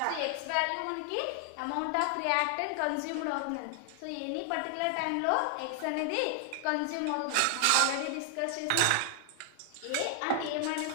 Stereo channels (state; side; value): different; both; correlation 0.00